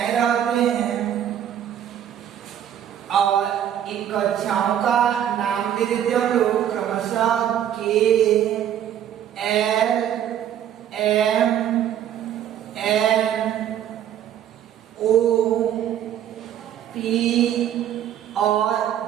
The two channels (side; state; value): left; quieter; 10.3 dB